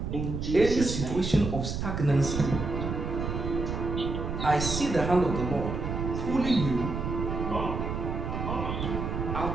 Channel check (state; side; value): noise; right; rumble, 3 dB below the sound